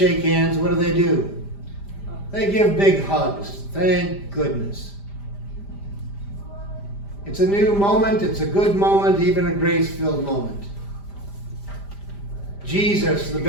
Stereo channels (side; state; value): right; late; 5.0 ms